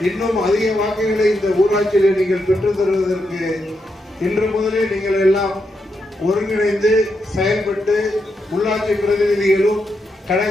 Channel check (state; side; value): normal; both; correlation 0.83